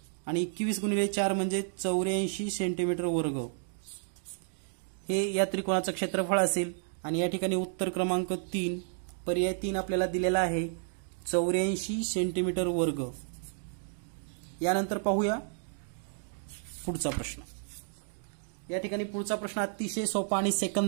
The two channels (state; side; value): silent; left; digital silence